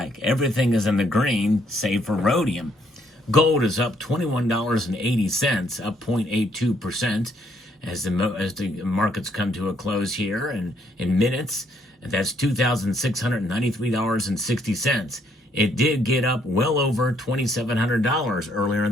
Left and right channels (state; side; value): normal; both; correlation 0.70